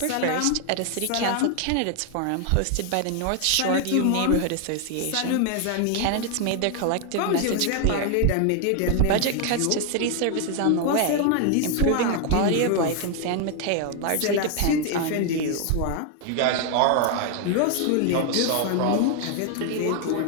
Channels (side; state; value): both; different; correlation 0.00